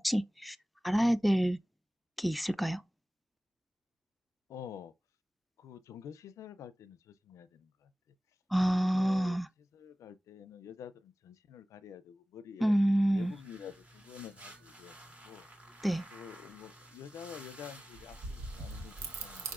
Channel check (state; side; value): normal; both; correlation 0.97